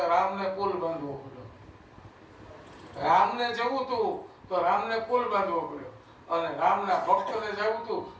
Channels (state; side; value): identical; both; correlation 1.00